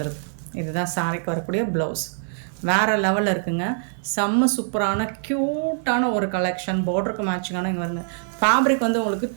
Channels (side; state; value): left; silent; 63 dB below the other